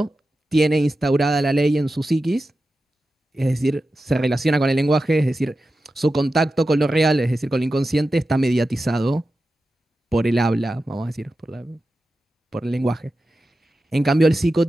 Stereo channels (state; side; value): normal; both; correlation 0.92